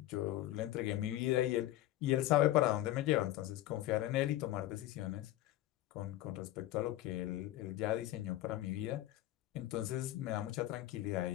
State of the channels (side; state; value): right; quieter; 14.7 dB